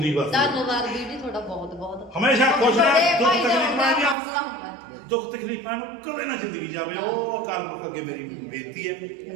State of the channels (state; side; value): drops out; left; at 4.2 s